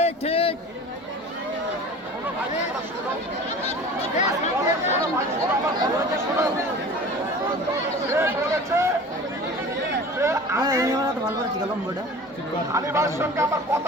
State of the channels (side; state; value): both; normal; correlation 0.40